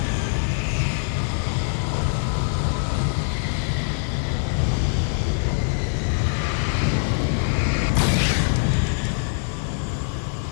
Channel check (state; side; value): silent; right; 62 dB below the other